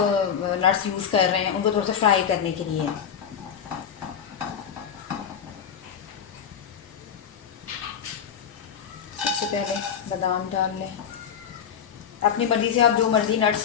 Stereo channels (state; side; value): quieter; right; 7.9 dB